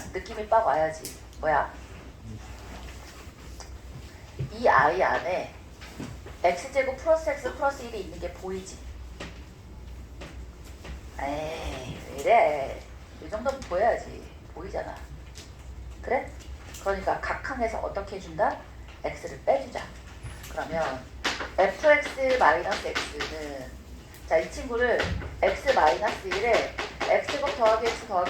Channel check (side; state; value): both; identical; correlation 1.00